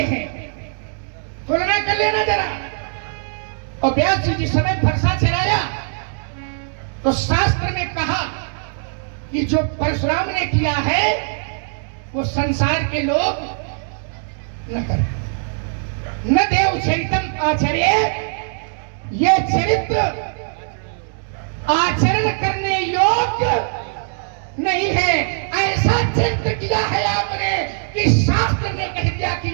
हैं, तुलना कर लेना जरा। और व्यास जी जिस समय फरसा चलाया तो शास्त्र ने कहा कि जो परशुराम ने किया है वो संसार के लोग न करें। न देव चरितम आचर्य, ये चरित्र आचरण करने योग्य नहीं है। ऐसा चरित्र किया है आपने कि शास्त्र ने कह दिया कि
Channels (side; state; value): left; silent; digital silence